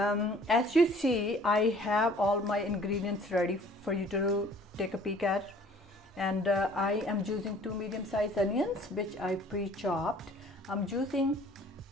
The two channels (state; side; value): normal; both; correlation 0.53